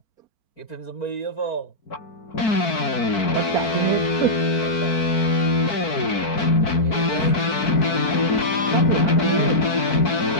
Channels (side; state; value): right; late; 4.5 ms